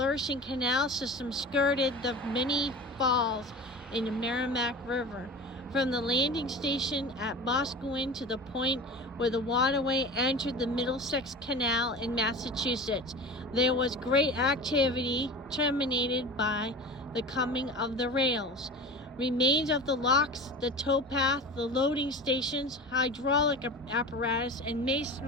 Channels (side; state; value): both; normal; correlation 0.33